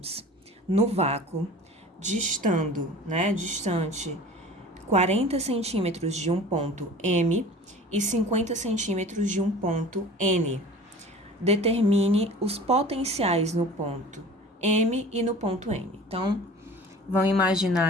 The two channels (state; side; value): normal; both; correlation 0.42